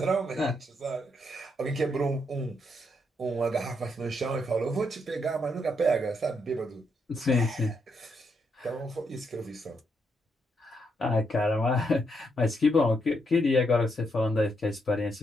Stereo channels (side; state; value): both; normal; correlation 0.78